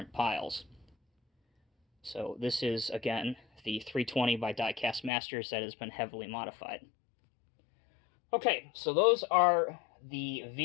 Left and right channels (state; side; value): drops out; right; at 5.1 s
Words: piles. So this is, again, the 320 by Diecast Masters that has been heavily modified. Okay, so those are the